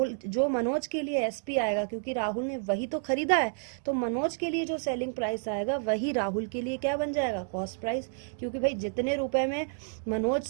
मनोज के लिए SP आएगा, क्योंकि राहुल ने वही तो खरीदा है, तो मनोज के लिए जो सेलिंग प्राइस आएगा वही राहुल के लिए क्या बन जाएगा, कॉस्ट प्राइस, क्योंकि भाई जितने रुपए में मनोज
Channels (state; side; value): silent; left; digital silence